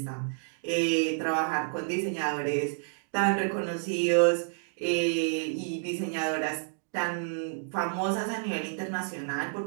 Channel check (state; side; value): silent; left; 58 dB below the other